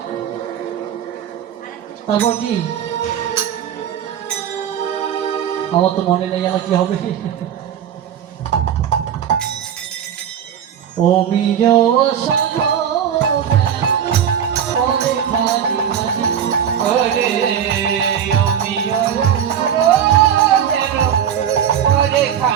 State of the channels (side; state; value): left; quieter; 9.1 dB